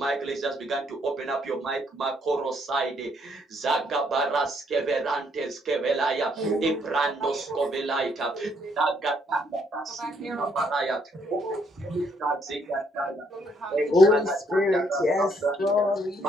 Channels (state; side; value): normal; both; correlation 0.70